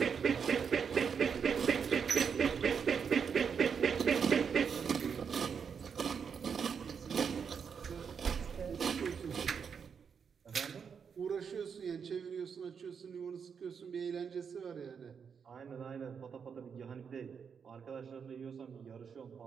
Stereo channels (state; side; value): quieter; left; 6.6 dB